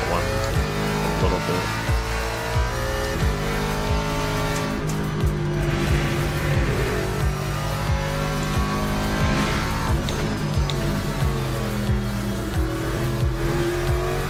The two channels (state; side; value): identical; both; correlation 1.00